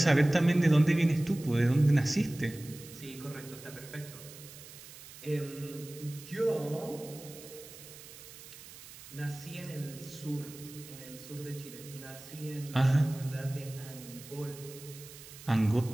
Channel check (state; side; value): noise; right; hiss, 17 dB below the sound